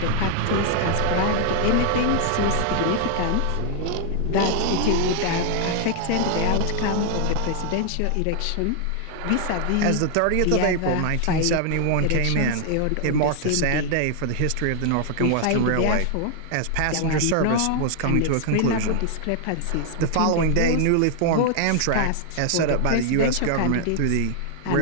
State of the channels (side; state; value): both; different; correlation 0.00